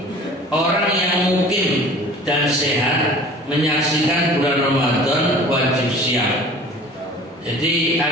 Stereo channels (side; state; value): both; normal; correlation 0.45